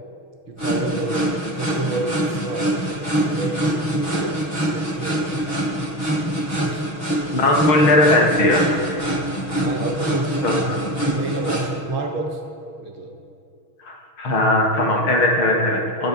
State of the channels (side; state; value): right; late; 6.3 ms